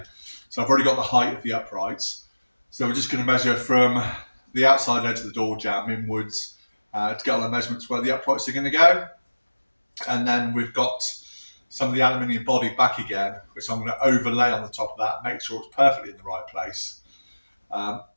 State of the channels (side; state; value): both; inverted; correlation -1.00